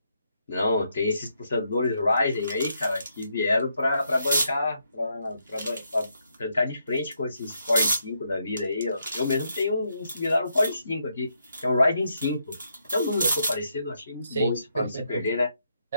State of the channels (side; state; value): both; inverted; correlation -0.78